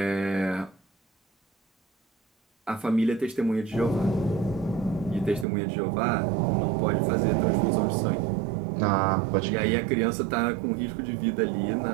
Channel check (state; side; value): drops out; left; at 5.5 s